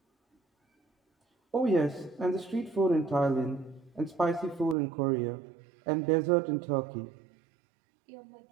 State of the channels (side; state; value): left; drops out; at 4.8 s